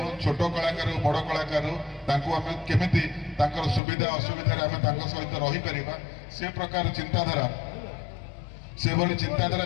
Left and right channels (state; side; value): drops out; right; at 3.8 s